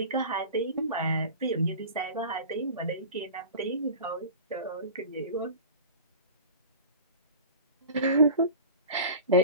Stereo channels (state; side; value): inverted; both; correlation -0.35